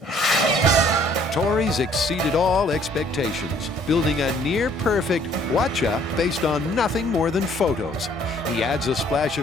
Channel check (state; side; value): normal; both; correlation 0.60